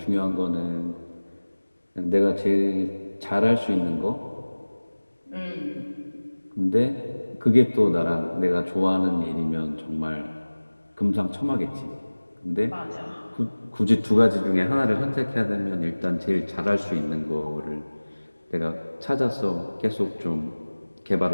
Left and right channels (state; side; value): inverted; both; correlation -1.00